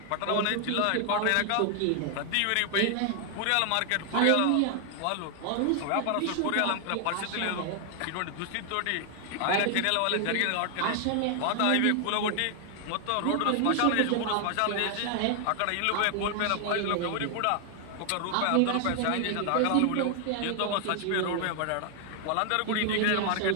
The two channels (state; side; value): different; both; correlation 0.00